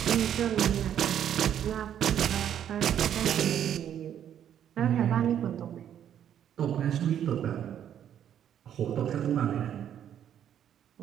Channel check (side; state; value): left; quieter; 9.8 dB